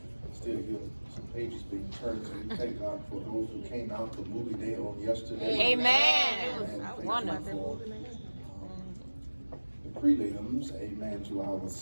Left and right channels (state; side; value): inverted; both; correlation -1.00